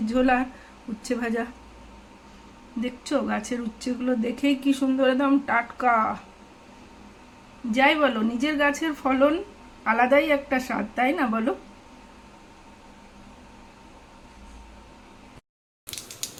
ঝোল আর উচ্ছে ভাজা দেখছো গাছের উচ্ছেগুলো দেখেই কি সুন্দর, একদম টাটকা। যাই বলো, নিজের গাছের ফলন আলাদাই একটা স্বাদ, তাই না বলো?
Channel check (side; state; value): both; identical; correlation 1.00